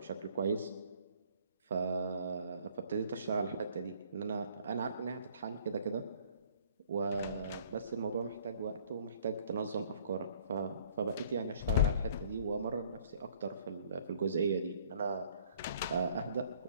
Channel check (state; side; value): inverted; both; correlation -0.57